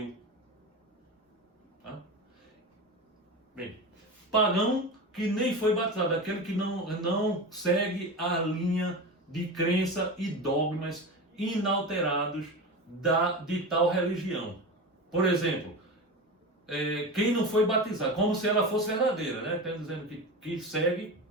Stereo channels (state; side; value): normal; both; correlation 0.25